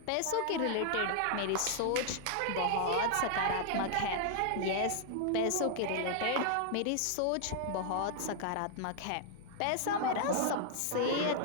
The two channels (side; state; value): both; different; correlation 0.00